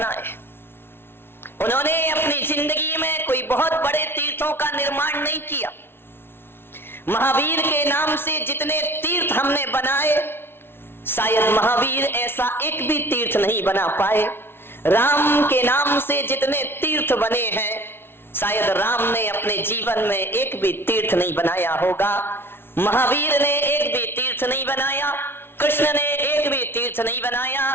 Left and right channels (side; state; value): right; late; 0.11 ms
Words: उन्होंने अपनी जिंदगी में कोई बहुत बड़े तीर्थों का निर्माण नहीं किया। महावीर के नाम से जितने तीर्थ हमने बनाए, शायद महावीर ऐसा एक भी तीर्थ नहीं बना पाए। राम के नाम से जितने तीर्थ बने हैं, शायद राम ने अपने जीवन में एक भी तीर्थ नहीं बनाया होगा। महावीर ने एक भी तीर्थ नहीं बनाया, कृष्ण ने एक भी तीर्थ नहीं बनाया।